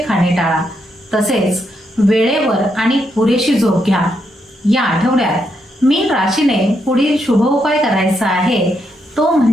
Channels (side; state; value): both; normal; correlation 0.79